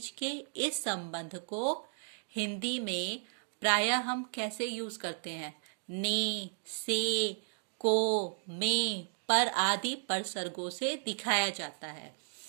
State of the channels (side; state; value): left; silent; digital silence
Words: के इस संबंध को हिंदी में प्रायः हम कैसे यूज करते हैं? ने, से, को, में, पर आदि परसर्गों से दिखाया जाता है।